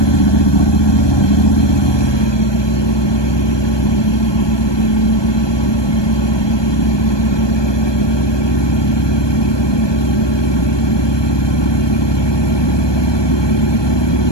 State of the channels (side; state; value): right; late; 1.2 ms